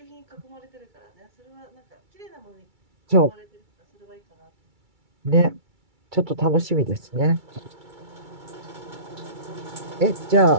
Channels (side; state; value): left; late; 2.3 ms